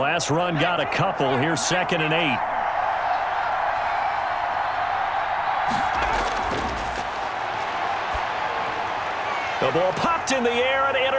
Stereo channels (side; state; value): both; identical; correlation 1.00